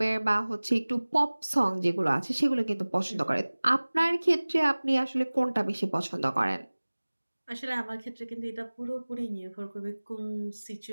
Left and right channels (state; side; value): inverted; both; correlation -1.00